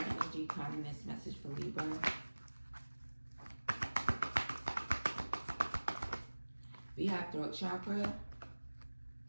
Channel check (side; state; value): both; inverted; correlation -1.00